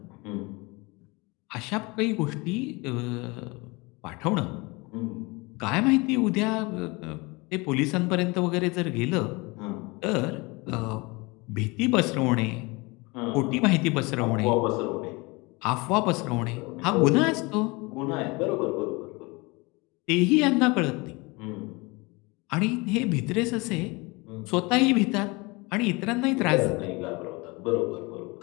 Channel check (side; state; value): right; quieter; 25.8 dB